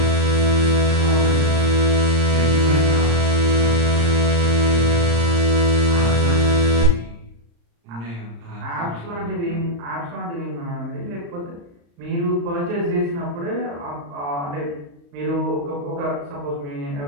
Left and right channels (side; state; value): left; late; 35 ms